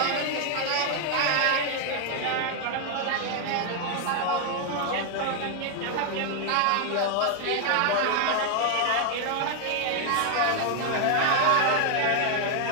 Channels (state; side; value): different; both; correlation 0.00